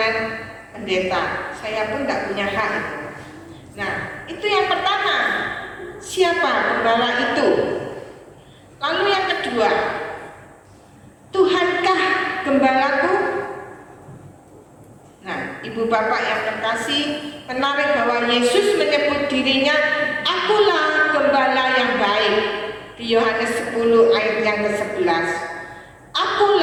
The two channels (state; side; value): identical; both; correlation 1.00